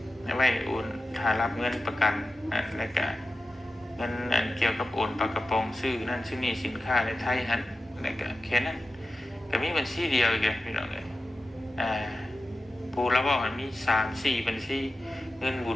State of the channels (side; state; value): both; normal; correlation 0.93